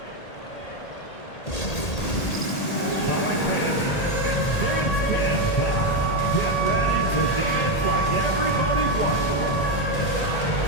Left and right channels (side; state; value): right; late; 1.8 ms